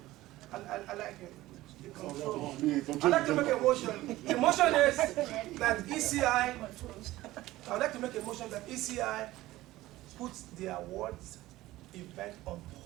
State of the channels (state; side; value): quieter; left; 16.9 dB